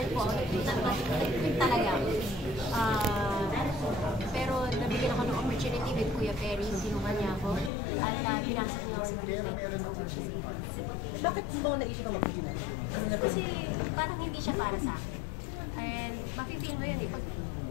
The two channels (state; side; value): drops out; right; at 7.7 s